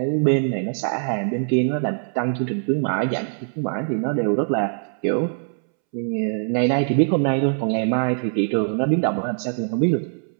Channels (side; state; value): left; silent; 64 dB below the other